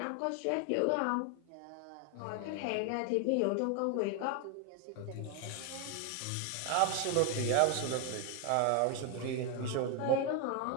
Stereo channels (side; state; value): both; different; correlation 0.01